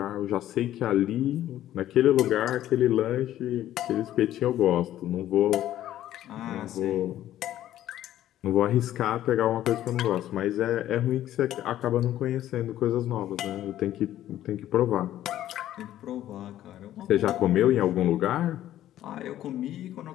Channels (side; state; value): right; quieter; 12.8 dB